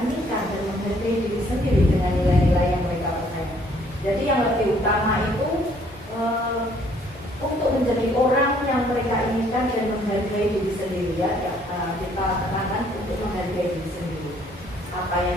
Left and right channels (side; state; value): both; normal; correlation 0.63